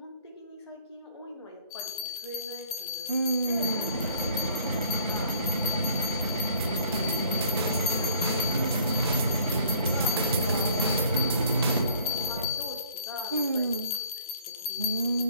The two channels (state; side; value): inverted; both; correlation -0.56